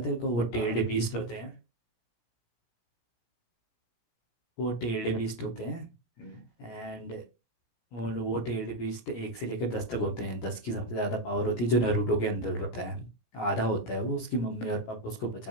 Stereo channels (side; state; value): right; late; 17 ms